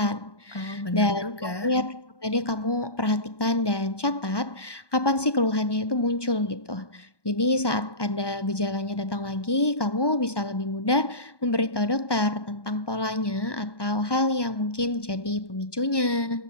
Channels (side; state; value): right; late; 1.2 ms